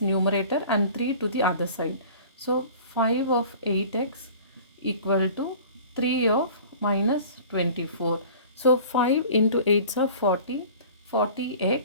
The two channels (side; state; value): both; inverted; correlation -0.44